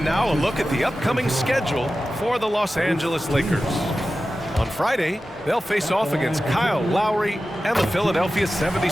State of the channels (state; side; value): normal; both; correlation 0.94